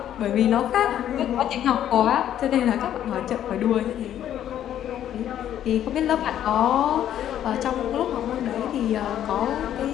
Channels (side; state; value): right; quieter; 10.9 dB